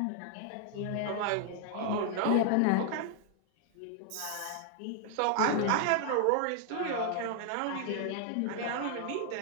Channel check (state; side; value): different; both; correlation 0.00